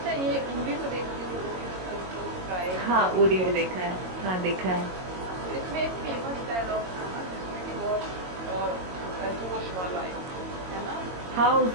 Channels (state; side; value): late; left; 22 ms